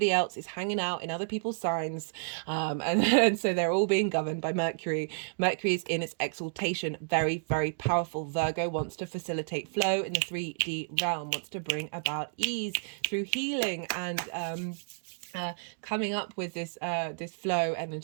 else is hanging out in other people's signs, and so they're all being governed by Mercury. Mercury is in its exaltation, very, very powerful. Virgo wants to facilitate flow in the 3D realm, wants to bring about ease through healing and coming up with this this flow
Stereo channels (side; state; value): left; silent; digital silence